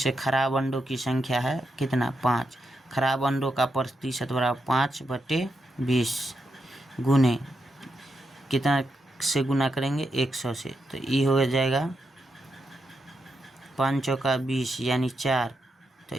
खराब अंडों की संख्या है कितना 5, खराब अंडों का प्रतिशत बराबर 5/20 गुने कितना से गुना करेंगे 100 से, तो ये हो जाएगा 5 चौका 20, यानी 4, तो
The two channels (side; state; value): both; normal; correlation 0.84